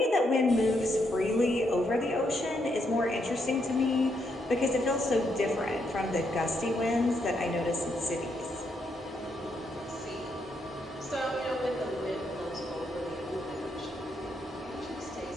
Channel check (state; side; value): normal; both; correlation 0.77